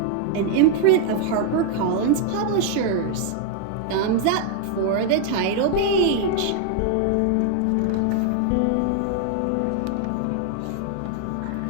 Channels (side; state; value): both; different; correlation 0.00